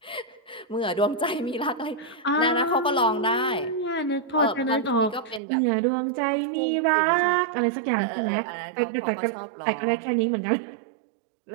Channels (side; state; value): left; drops out; at 5.4 s